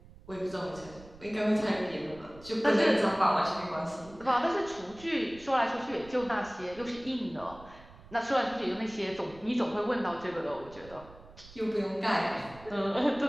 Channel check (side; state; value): right; noise; rumble, 20 dB below the sound